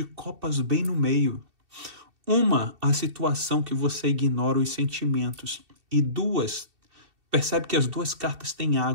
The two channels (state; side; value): late; left; 2.7 ms